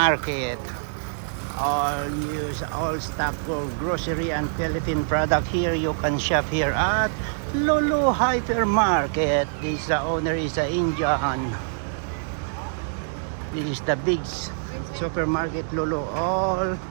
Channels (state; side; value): silent; left; 56 dB below the other